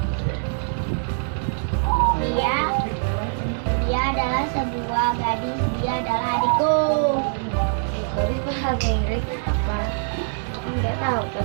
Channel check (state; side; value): silent; left; digital silence